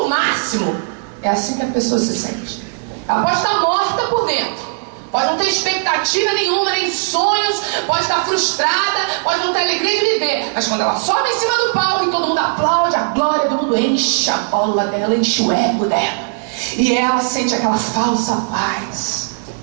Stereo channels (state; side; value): silent; left; digital silence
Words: o máximo. É assim que a pessoa se sente. Ela pode estar morta por dentro, pode não ter expectativa nenhuma, nem sonhos, pode estar frustrada, pode não ter alegria de viver, mas quando ela sobe em cima do palco e todo mundo aplaude, a glória do mundo enche a bola dela, enche o ego dela. E ela sente aquela falsa paz.